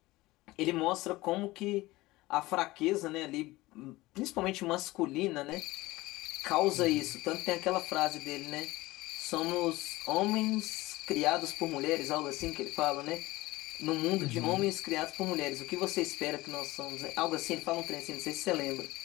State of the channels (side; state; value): right; quieter; 19.4 dB